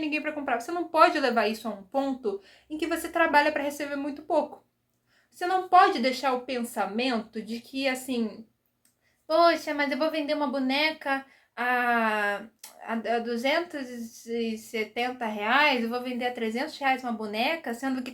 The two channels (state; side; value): identical; both; correlation 1.00